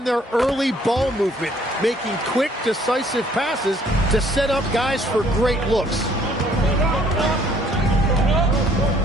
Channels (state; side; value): normal; both; correlation 0.61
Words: their early ball movement, making quick, decisive passes to set up guys for great looks.